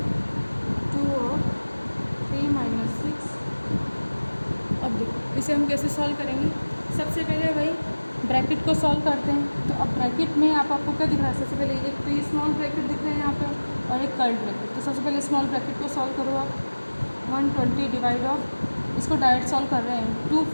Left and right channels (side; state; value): both; inverted; correlation -1.00